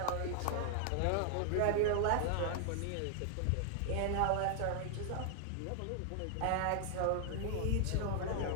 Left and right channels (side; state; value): both; different; correlation 0.00